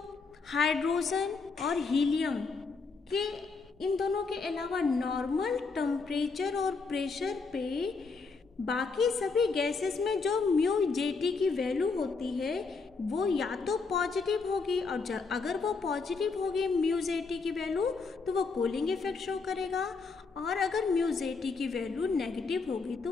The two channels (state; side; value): quieter; right; 4.5 dB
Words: हाइड्रोजन और हीलियम के इन दोनों के अलावा नॉर्मल टेम्परेचर और प्रेशर पे बाकी सभी गैसेस में जो म्यू जेटी की वैल्यू होती है वो या तो पॉजिटिव होगी, और अगर वो पॉजिटिव होगी म्यू जेटी की वैल्यू तो वो कूलिंग इफेक्ट शो करेगा, और अगर म्यू जेटी की वैल्यू नेगेटिव होगी तो